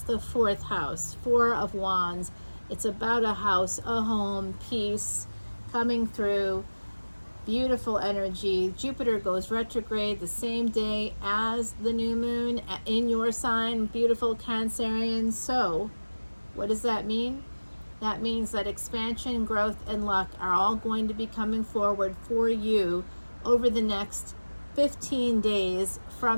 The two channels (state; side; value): inverted; both; correlation -1.00